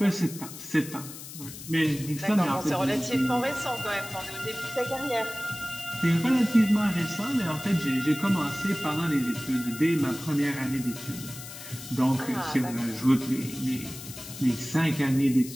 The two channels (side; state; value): left; noise; hiss, 13 dB below the sound